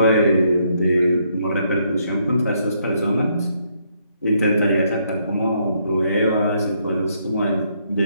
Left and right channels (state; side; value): inverted; both; correlation -0.73